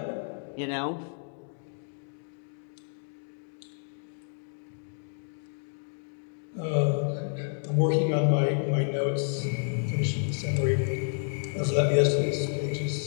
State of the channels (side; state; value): right; silent; 58 dB below the other